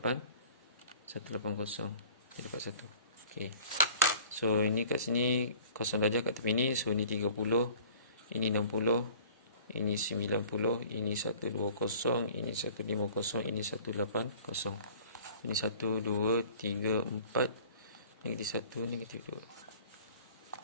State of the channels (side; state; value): both; inverted; correlation -0.49